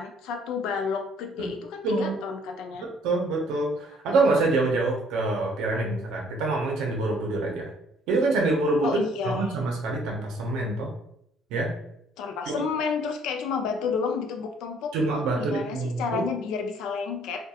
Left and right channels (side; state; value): both; normal; correlation 0.60